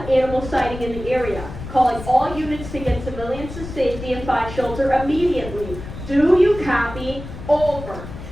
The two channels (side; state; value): left; noise; rumble, 11 dB below the sound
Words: animal sighting in the area, calling all units to get civilians to safety and find shelter immediately. Do you copy? Over.